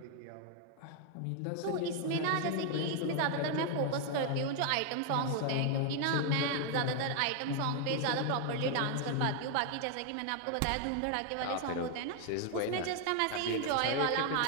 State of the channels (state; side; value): different; both; correlation 0.00